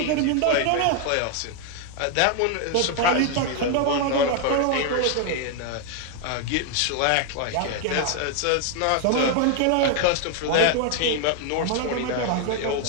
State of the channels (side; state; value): both; different; correlation 0.01